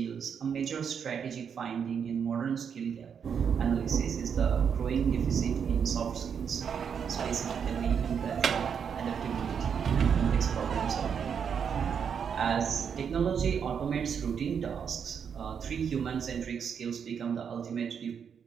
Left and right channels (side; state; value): left; quieter; 7.2 dB